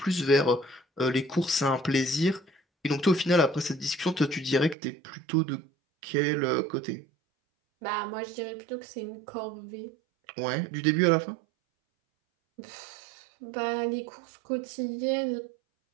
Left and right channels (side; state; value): left; drops out; at 4.8 s